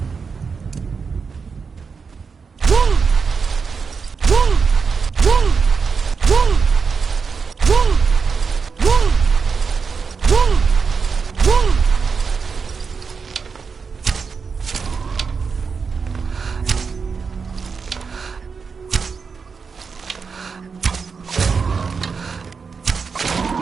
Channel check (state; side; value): quieter; left; 5.4 dB